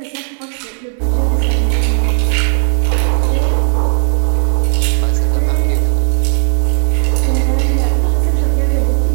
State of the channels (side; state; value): left; silent; digital silence